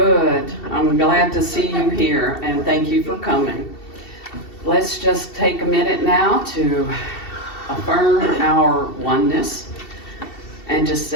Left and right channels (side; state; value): right; late; 2.7 ms